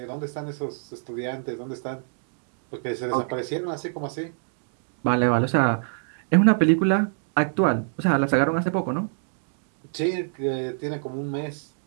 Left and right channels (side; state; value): left; silent; digital silence